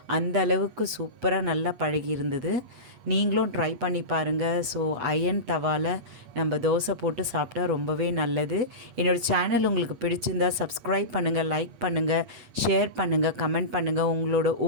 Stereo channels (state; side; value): late; left; 8.5 ms